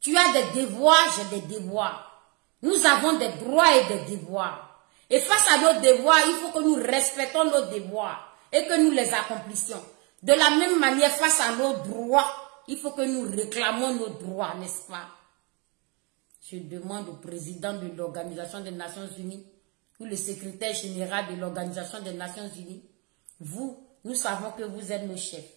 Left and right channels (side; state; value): left; quieter; 30.7 dB